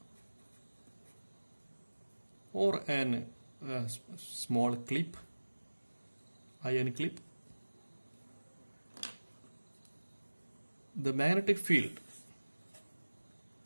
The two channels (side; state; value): both; inverted; correlation -1.00